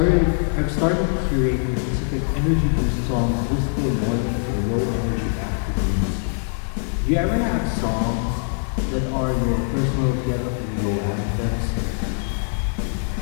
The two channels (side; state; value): right; silent; 62 dB below the other